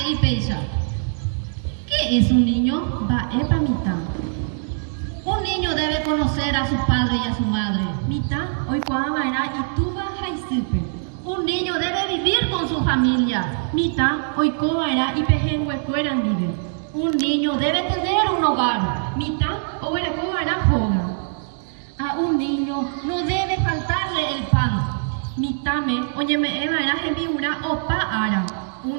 y peisa. ¿Qué es un niño? Va, epa, mitad. Un niño debe conocer a su padre y a su madre. Mitad, hoy cuando va y tú vas a irse. Un niño debe vivir con su familia. Mitad, hoy cuando va y pejengue fueran vive. Un niño debe tener un hogar. Mitad, o era cuando va joga. A un niño no debe faltarle el pan. Mitame, oye me eva era gemiura o pa ara.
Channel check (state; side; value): silent; left; digital silence